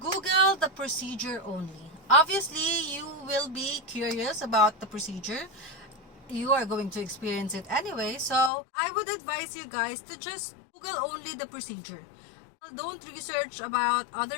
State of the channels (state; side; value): drops out; right; at 8.5 s